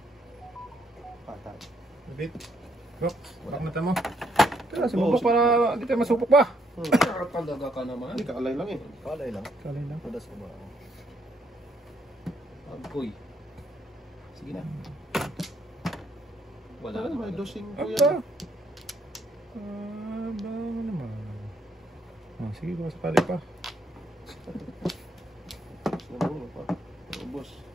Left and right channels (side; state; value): both; normal; correlation 0.72